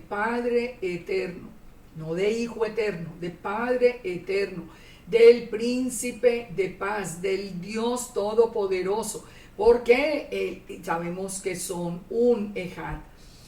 Eterno, no de Hijo Eterno, de Padre Eterno, del Príncipe de Paz, del Dios Todopoderoso, porque sabemos que son un Ejad.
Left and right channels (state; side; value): identical; both; correlation 1.00